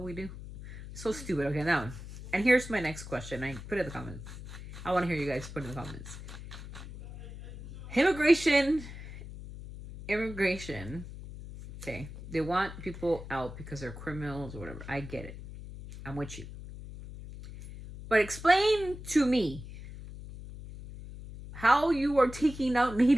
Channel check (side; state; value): left; noise; hum, 12 dB below the sound